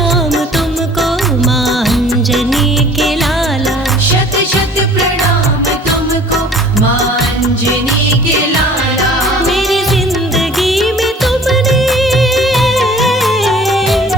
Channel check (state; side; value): normal; both; correlation 0.49